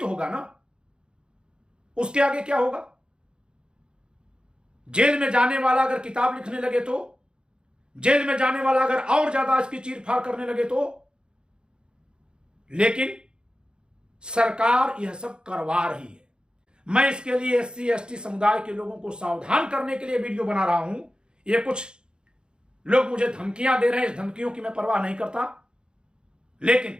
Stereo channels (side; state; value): left; late; 0.050 ms